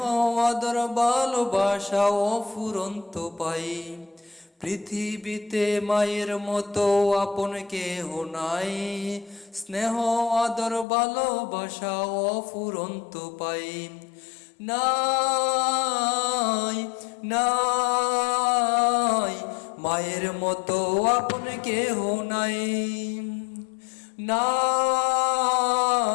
আদর ভালোবাসা অফুরন্ত পাই। পৃথিবীতে মায়ের মতো আপন কেহ নাই, স্নেহ আদর ভালোবাসা অফুরন্ত পাই। নাই নাই মায়ের মতো আপন কেহ নাই,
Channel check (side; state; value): right; drops out; at 10.9 s